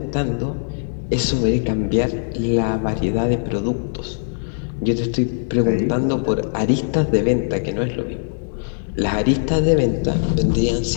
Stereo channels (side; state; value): right; silent; digital silence